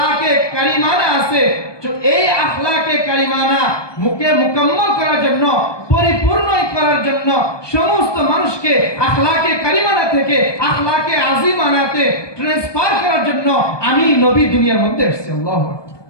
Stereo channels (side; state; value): right; late; 1.2 ms